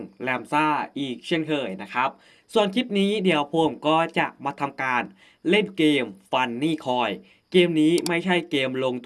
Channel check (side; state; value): both; identical; correlation 1.00